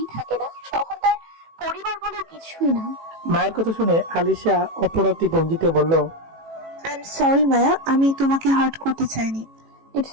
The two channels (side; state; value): left; late; 18 ms